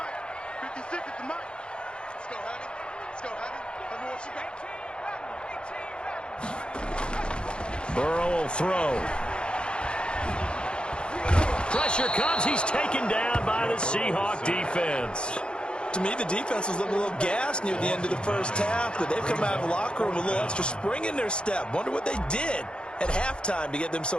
56 to Mike. Let's go, honey. Let's go, honey. Burrow will throw. Pressure comes. He's taken down by the Seahawk defense. To me, the defense was looking a little gassed near the end of the first half, but they've come out of the locker room with a little extra spring in their step. Wonder what they did. at halftime to get them so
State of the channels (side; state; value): right; late; 0.054 ms